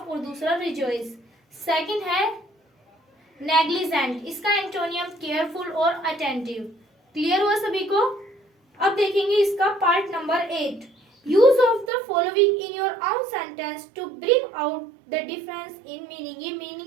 और दूसरा रिजॉइस। सेकंड है नेग्लिजेंट, इसका एंटोनियम केयरफुल और अटेंटिव। क्लियर हुआ सभी को? अब देखेंगे इसका part number 8, use of the following in your own sentence to bring out the difference in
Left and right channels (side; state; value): left; drops out; at 11.9 s